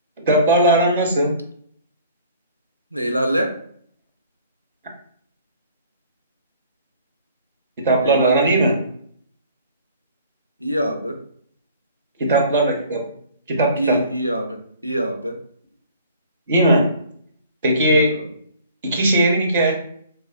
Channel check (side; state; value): both; inverted; correlation -0.52